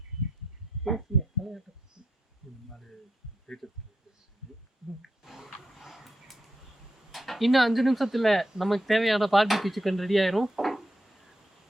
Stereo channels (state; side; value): normal; both; correlation 0.83